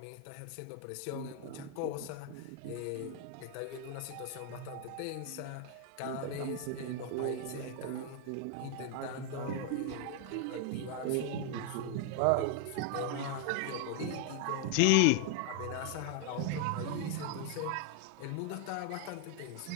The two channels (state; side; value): different; both; correlation 0.00